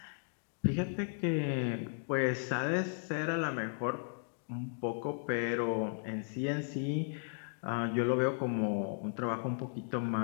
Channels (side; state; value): right; silent; digital silence